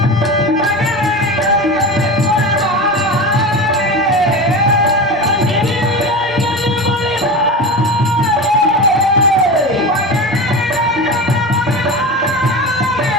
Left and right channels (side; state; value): both; normal; correlation 0.26